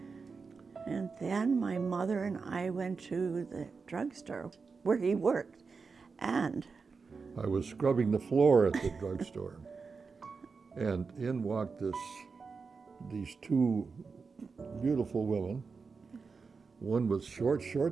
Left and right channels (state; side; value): quieter; left; 4.9 dB